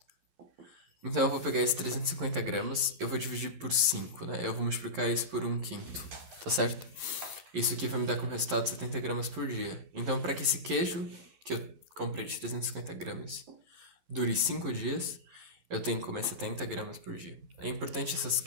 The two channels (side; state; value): left; late; 11 ms